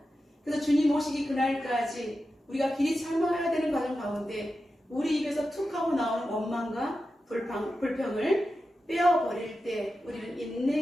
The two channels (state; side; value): normal; both; correlation 0.91